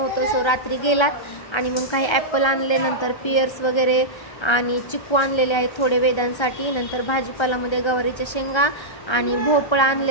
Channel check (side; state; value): right; late; 1.3 ms